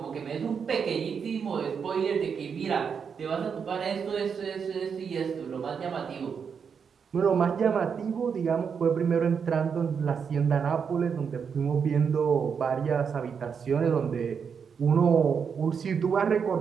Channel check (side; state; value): left; quieter; 6.5 dB